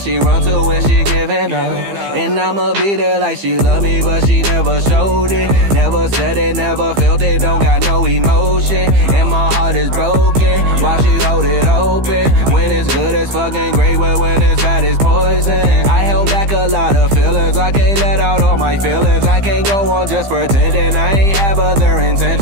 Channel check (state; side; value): late; left; 15 ms